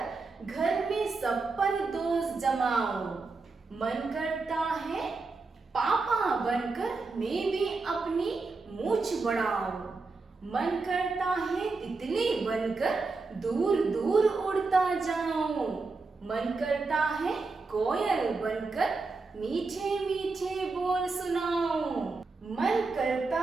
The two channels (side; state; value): left; quieter; 4.0 dB